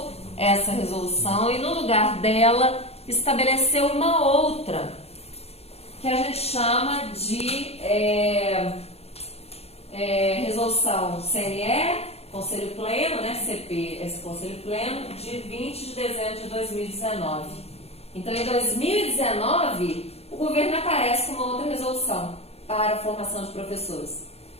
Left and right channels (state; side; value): late; right; 0.30 ms